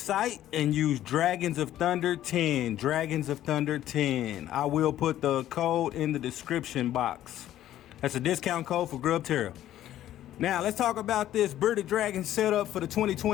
and use Dragons of Thunder 10. Dragons of Thunder 10. I will put the code in the description box. That's a discount code for Grubterra. Now, let's talk about this Bearded Dragon setup for the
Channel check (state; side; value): quieter; right; 12.7 dB